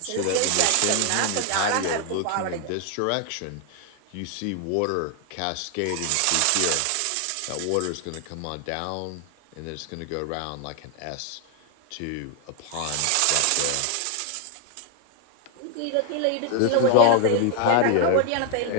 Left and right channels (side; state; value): both; different; correlation 0.01